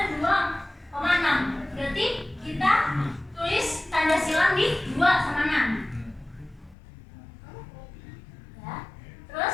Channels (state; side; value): drops out; right; at 6.8 s